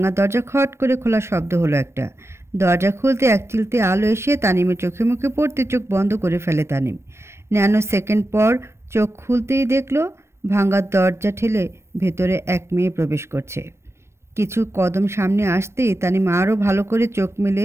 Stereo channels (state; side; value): late; left; 0.13 ms